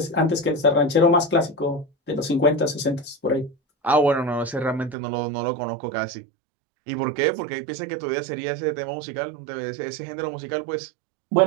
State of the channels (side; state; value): left; drops out; at 5.0 s